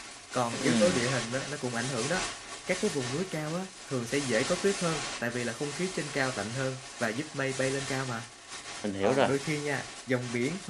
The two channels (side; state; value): both; identical; correlation 1.00